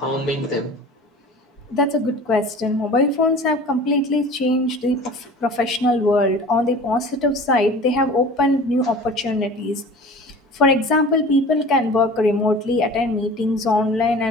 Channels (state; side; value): normal; both; correlation 0.41